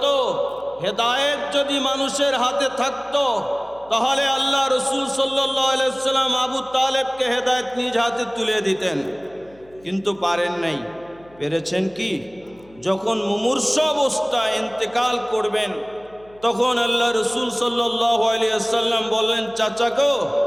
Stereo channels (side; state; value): left; noise; hum, 27 dB below the sound